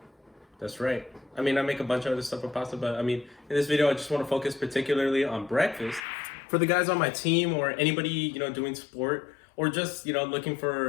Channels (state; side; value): drops out; right; at 6.1 s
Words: That's right. I mean, I make a bunch of other stuff with pasta, but I mean, in this video, I just want to focus particularly on breakfast. For the guys on my team or anybody, you know, doing sport or just, you know, looking